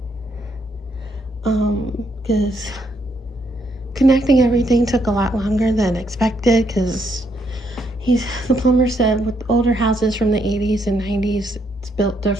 Because connecting everything took a lot longer than expected, because the plumber said with older houses from the 80s and 90s, it's built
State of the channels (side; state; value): both; normal; correlation 0.74